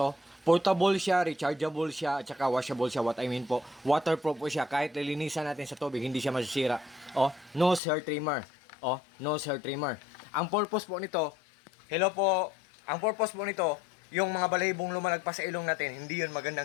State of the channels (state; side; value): drops out; right; at 7.8 s